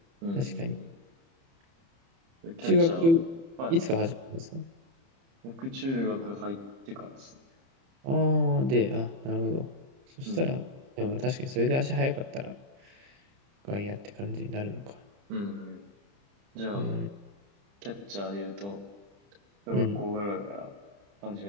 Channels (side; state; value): left; late; 30 ms